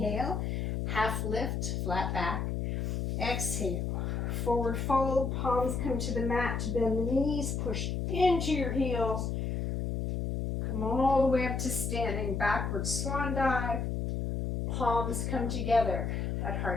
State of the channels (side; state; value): left; noise; hum, 1 dB below the sound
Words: half lift, flat back. Exhale, forward fold, palms come to the mat, bend the knees, push into your heels. Come all the way up to standing, backward swan dive. Palms come together at